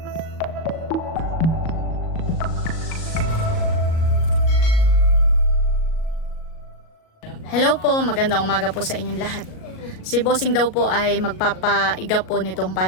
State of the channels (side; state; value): right; late; 37 ms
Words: Hello po, magandang umaga po sa inyong lahat. Si Bossing daw po ay magpapaiga po nitong